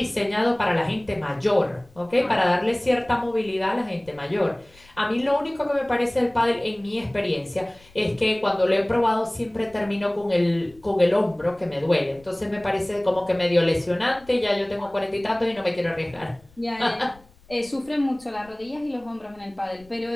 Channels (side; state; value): left; noise; rumble, 27 dB below the sound